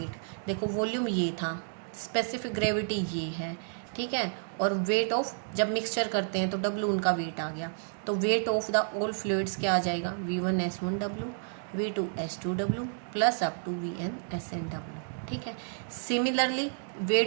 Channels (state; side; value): silent; left; digital silence